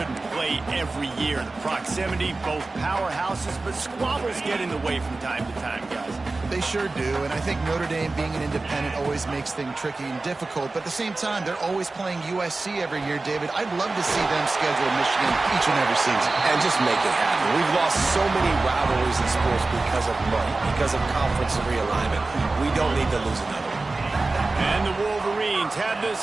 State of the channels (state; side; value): quieter; left; 3.4 dB